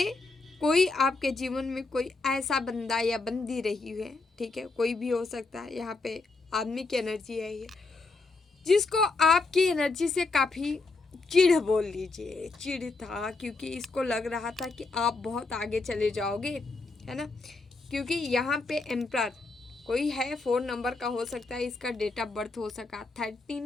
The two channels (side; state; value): right; quieter; 3.7 dB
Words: कोई आपके जीवन में कोई ऐसा बंदा या बंदी रही है, ठीक है, कोई भी हो सकता है, यहाँ पे आदमी की एनर्जी है ये, जिसको आपकी एनर्जी से काफ़ी चिढ़ बोल लीजिए, चिढ़ था, क्योंकि इसको लग रहा था कि आप बहुत आगे चले जाओगे, है ना, क्योंकि यहाँ पे एम्परर कोई है, 4 नंबर का हो सकता है, इसका डेट ऑफ बर्थ हो सका